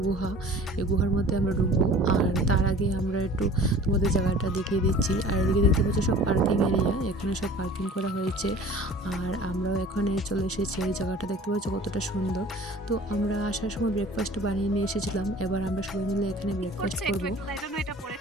গুহা। এই গুহার মধ্যে আমরা ঢুকবো। আর তার আগে আমরা একটু তোমাদের জায়গাটা দেখিয়ে দিচ্ছি। আর এদিকে দেখতে পাচ্ছ সব পার্কিং এরিয়া, এখানে সব পার্কিং করা হয়েছে। আর আমরাও এখানে চলে এসেছি। এই জায়গাটা দেখতে পাচ্ছ কতটা সুন্দর। তো আমরা আসার সময় ব্রেকফাস্ট বানিয়ে নিয়ে এসেছিলাম। এবার আমরা সবাই মিলে এখানে ব্রেকফাস্ট করব।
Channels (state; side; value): normal; both; correlation 0.45